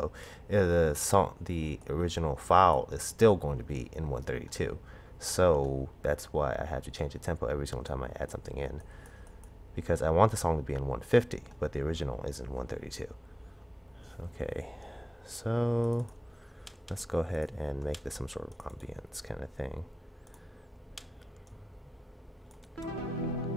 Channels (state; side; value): normal; both; correlation 0.98